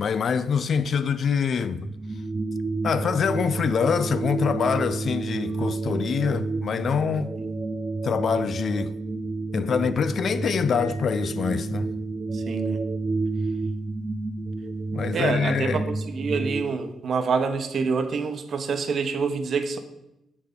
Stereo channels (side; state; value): both; normal; correlation 0.79